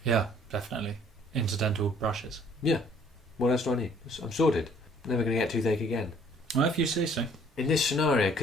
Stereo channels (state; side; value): normal; both; correlation 0.58